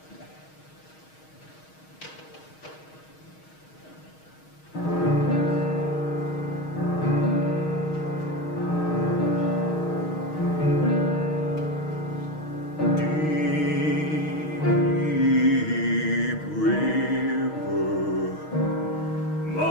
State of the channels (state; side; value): late; right; 6.4 ms